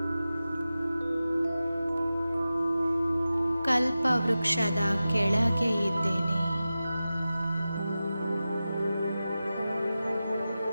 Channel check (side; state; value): both; inverted; correlation -0.94